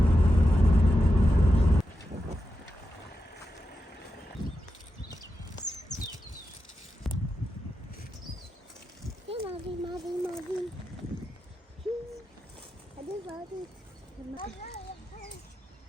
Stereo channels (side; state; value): both; normal; correlation 0.89